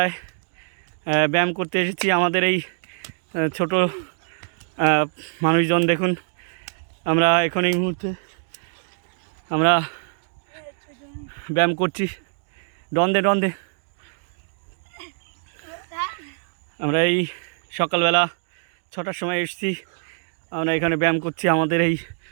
ব্যায়াম করতে এসেছি। আমাদের এই ছোট মানুষজন দেখুন, আমরা এখন এই মুহূর্তে আমরা ব্যায়াম করছি। ডন্দে আমরা এই সকালবেলা 6টার সময় এসেছি। আমরা এখানে ব্যায়াম করছি আমাদের এই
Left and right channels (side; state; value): left; silent; digital silence